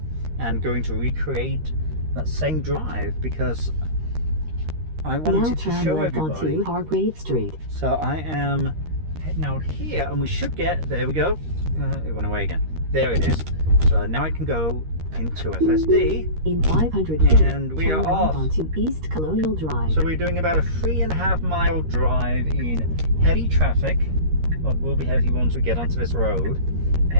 and going to recreate that same drive because I wanted to show everybody. Onto Hargrave Street. So I am heading out here and we should get, there we go, it went away again. There it is. So now I can go into FSD. In 500 feet, and we are off onto East Colonial Drive. So we're doing about a 3.5 mile drive in heavy traffic. Well, it will be heavy once we get onto this road.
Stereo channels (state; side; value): late; left; 13 ms